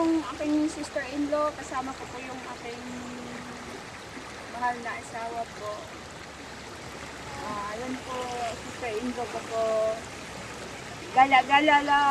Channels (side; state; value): both; identical; correlation 1.00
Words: aking sister-in-law. Kasama ko po yung aking mahal na asawa po. Ayan po, sister-in-law ko po. Gala-gala